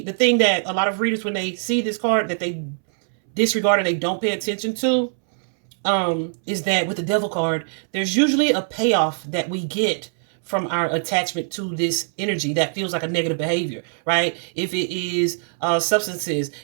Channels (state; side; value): silent; left; 64 dB below the other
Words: the thing that a lot of readers, when they see this card, that they disregard or they don't pay attention to, is that with the devil card, there's usually a payoff that we get from our attachment to this energy that feels like a negative behavior, right? If it is substances,